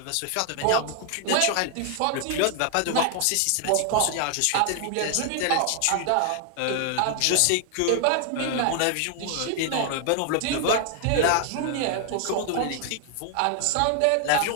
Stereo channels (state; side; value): different; both; correlation 0.00